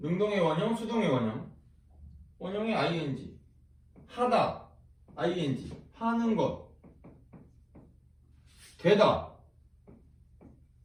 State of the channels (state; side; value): identical; both; correlation 1.00